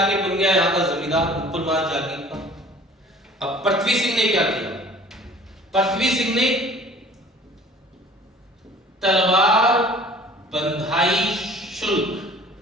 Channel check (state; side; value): normal; both; correlation 0.48